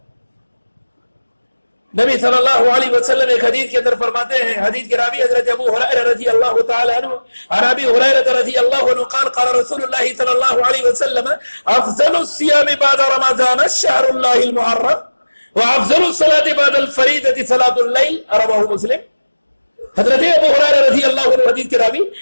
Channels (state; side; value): inverted; both; correlation -1.00